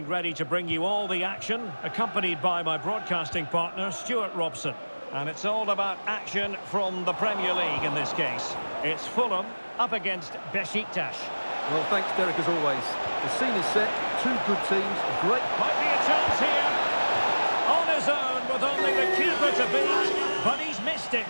ready to bring you all the action, accompanied by my broadcasting partner, Stuart Robson. And it's all about action from the Premier League in this case. It's Fulham up against Beşiktaş. Well, thanks, Derek, as always. The scene is set, two good teams, a great... Might be a chance here. On his own with only the keeper to beat, but he's missed it,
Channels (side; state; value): both; inverted; correlation -1.00